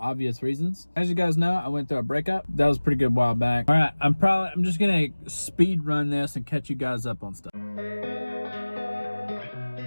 reasons. As you guys know, I went through a breakup. That was a pretty good while back. All right, I'm just gonna speed run this and catch you guys up on stuff.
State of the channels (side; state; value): both; inverted; correlation -1.00